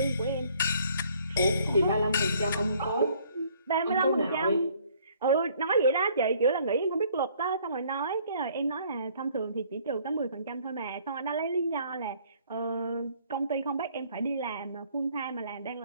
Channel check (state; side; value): inverted; both; correlation -0.61